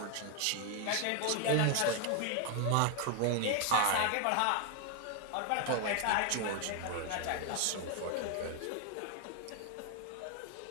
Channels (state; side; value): different; both; correlation 0.01